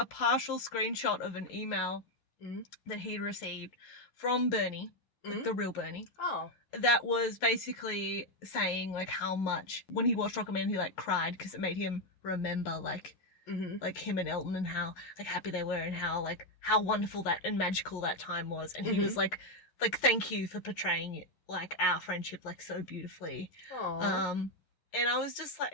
partial screenshot of an email that he'd received from Bernie, like the real Bernie. Oh. That was basically saying like how much when he watched Rocketman he like cried because it made him remember like him and Elton and how like happy they were and how wonderful that and magical that time was. And he was like thank you for portraying like our friendship like so beautifully. Aww. And I was just like,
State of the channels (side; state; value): right; late; 11 ms